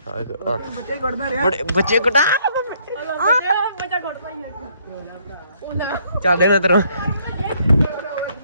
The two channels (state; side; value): inverted; both; correlation -0.67